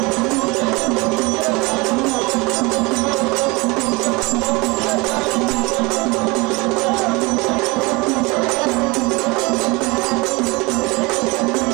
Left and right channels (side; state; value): left; quieter; 25.3 dB